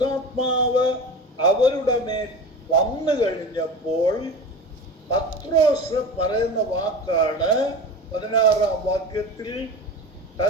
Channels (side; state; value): both; normal; correlation 0.31